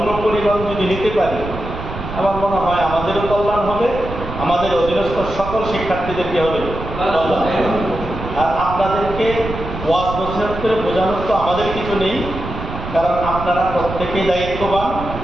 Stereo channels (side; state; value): right; noise; rumble, 8 dB below the sound